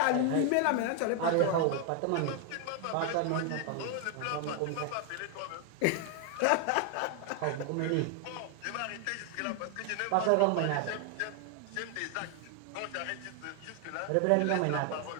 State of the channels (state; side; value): different; both; correlation 0.00